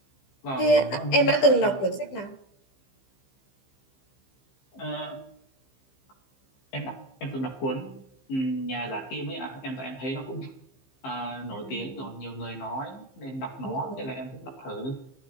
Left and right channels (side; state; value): right; late; 15 ms